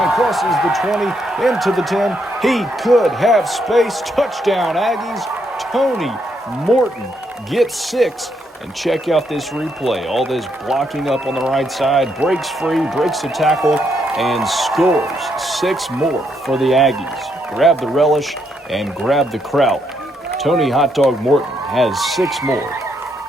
crosses the 20, into the 10. He could have space. Touchdown, Aggies. Tony Morton gets 6. And check out this replay. All this blocking up on the right side, breaks free, breaks the tackle, and scores 6 more for the Aggies. Grab the relish and grab the kraut. Tony Hot Dog Morton has 6 more.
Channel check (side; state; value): both; normal; correlation 0.76